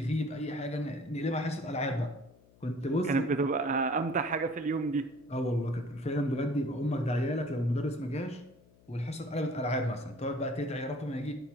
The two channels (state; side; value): noise; left; hum, 27 dB below the sound